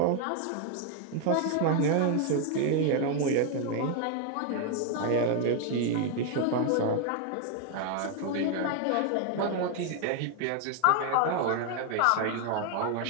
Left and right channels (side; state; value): both; different; correlation 0.00